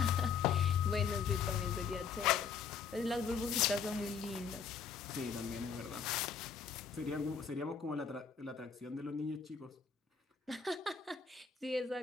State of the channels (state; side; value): quieter; right; 6.2 dB